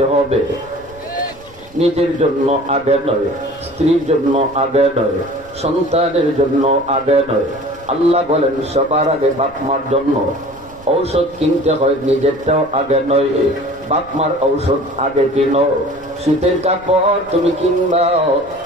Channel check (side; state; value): right; noise; rumble, 24 dB below the sound